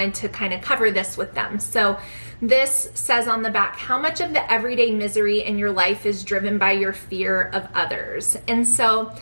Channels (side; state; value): both; inverted; correlation -1.00